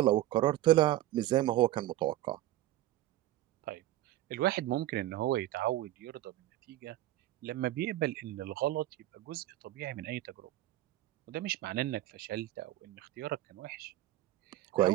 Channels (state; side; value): quieter; left; 14.7 dB